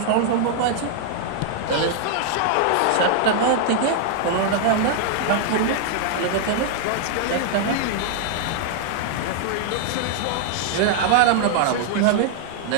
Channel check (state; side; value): different; both; correlation 0.00